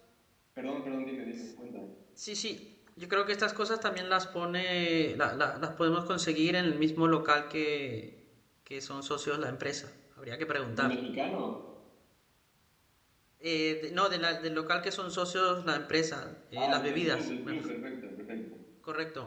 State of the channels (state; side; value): identical; both; correlation 1.00